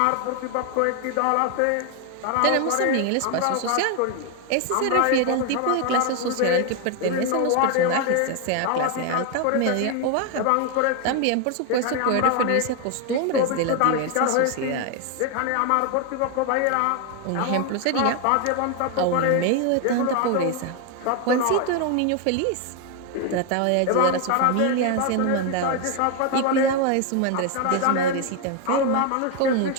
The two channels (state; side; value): different; both; correlation 0.01